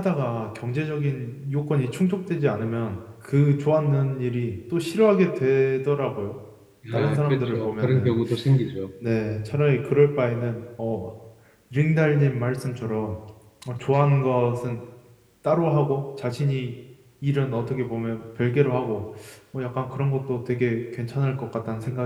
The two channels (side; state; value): both; identical; correlation 1.00